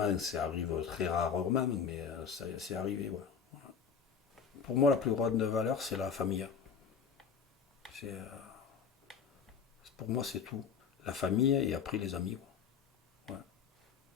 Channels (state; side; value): quieter; right; 6.6 dB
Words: ça arrive très rarement, mais c'est arrivé, ouais. Pour moi, la plus grande valeur, c'est la famille. C'est, pour moi, c'est tout. La famille et après les amis, quoi. Ouais.